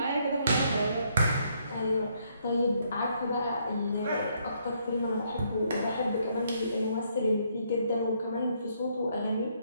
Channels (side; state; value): both; inverted; correlation -0.71